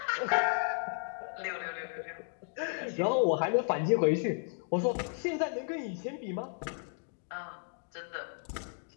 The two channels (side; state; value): right; silent; 55 dB below the other